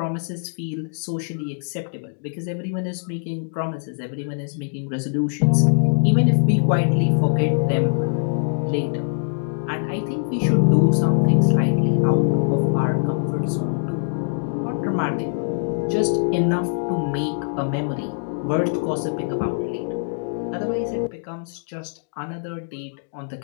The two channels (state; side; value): silent; right; digital silence